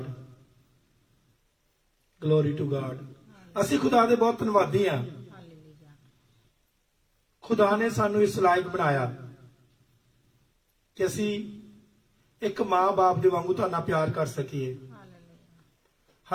glory to God. ਅਸੀਂ ਖੁਦਾ ਦੇ ਬਹੁਤ ਧੰਨਵਾਦੀ ਆ। ਹਾਲੇਲੂਇਆ। ਖੁਦਾ ਨੇ ਸਾਨੂੰ ਇਸ ਲਾਇਕ ਬਣਾਇਆ ਕਿ ਅਸੀਂ ਇੱਕ ਮਾਂ-ਬਾਪ ਦੇ ਵਾਂਗੂ ਤੁਹਾਡਾ ਪਿਆਰ ਕਰ ਸਕੀਏ। ਹਾਲੇਲੂਇਆ।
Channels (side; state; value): both; identical; correlation 1.00